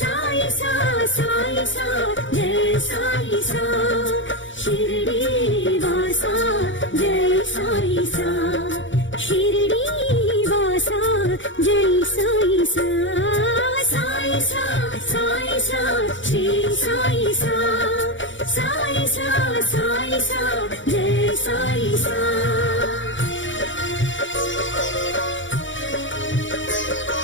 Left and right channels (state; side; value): late; right; 0.55 ms